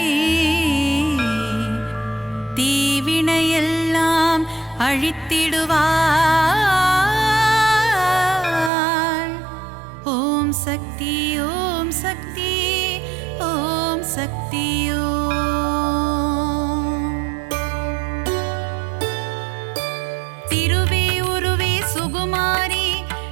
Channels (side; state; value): left; drops out; at 8.7 s